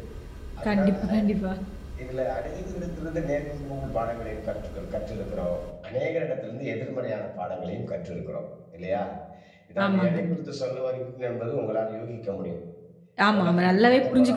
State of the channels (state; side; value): identical; both; correlation 1.00